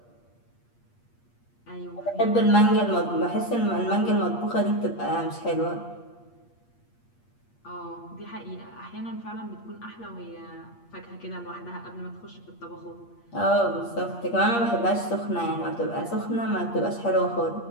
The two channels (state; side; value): late; right; 8.5 ms